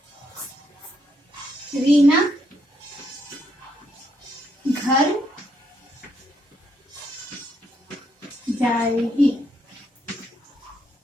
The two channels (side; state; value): both; normal; correlation 0.75